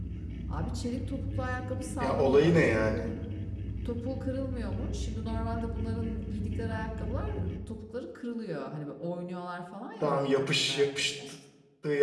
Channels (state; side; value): identical; both; correlation 1.00